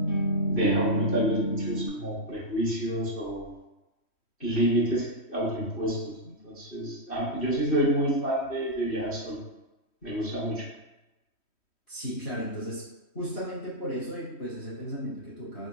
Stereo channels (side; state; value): right; late; 3.1 ms